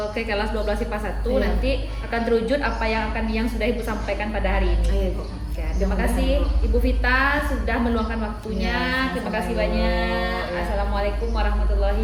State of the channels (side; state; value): both; identical; correlation 1.00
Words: ke kelas 12 IPA 1 nanti akan terwujud apa yang sudah Ibu sampaikan pada hari ini. Iya, Bu. Ya, terima kasih Ibu Vita sudah meluangkan waktunya. Terima kasih banyak. Assalamualaikum